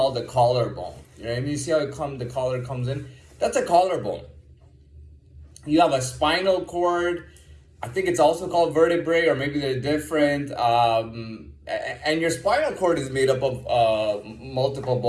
the collarbone. You know, and you see how the collar comes in? That's a collarbone. You have a spinal cord. I think it's also called vertebrae, or maybe they're different. And your spinal cord is made up of multiple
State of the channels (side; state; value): both; identical; correlation 1.00